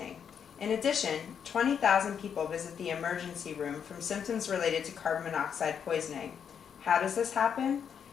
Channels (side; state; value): right; quieter; 7.6 dB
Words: In addition, 20,000 people visit the emergency room from symptoms related to carbon monoxide poisoning. How does this happen?